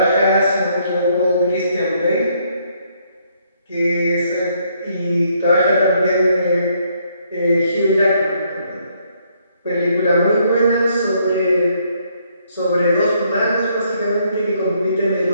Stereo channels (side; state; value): both; inverted; correlation -0.70